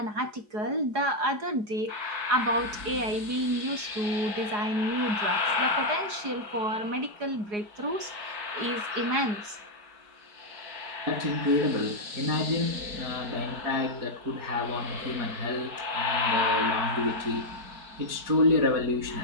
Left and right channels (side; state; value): left; late; 4.8 ms